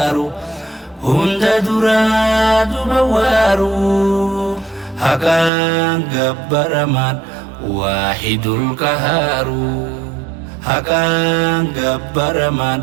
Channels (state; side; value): drops out; left; at 5.5 s